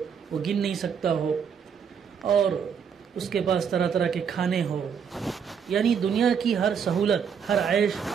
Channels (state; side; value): quieter; left; 7.1 dB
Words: وہ گن نہیں سکتا ہو، اور اس کے پاس طرح طرح کے کھانے ہو، یعنی دنیا کی ہر سہولت، ہر عیش